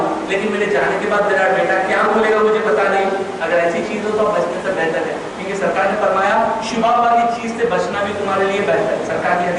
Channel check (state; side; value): identical; both; correlation 1.00